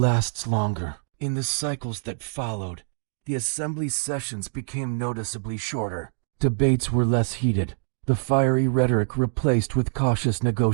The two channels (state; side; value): silent; left; digital silence